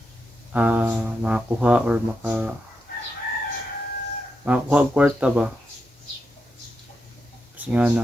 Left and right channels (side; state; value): both; normal; correlation 0.85